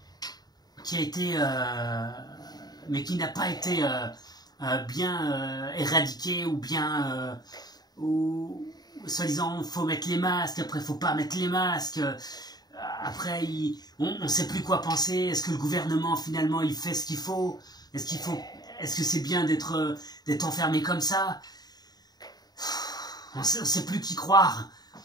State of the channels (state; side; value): late; right; 0.19 ms